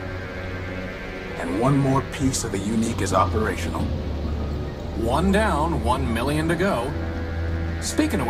And one more piece of the UNNIIC is operational. One down, 1 million to go. Speaking of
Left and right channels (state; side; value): identical; both; correlation 1.00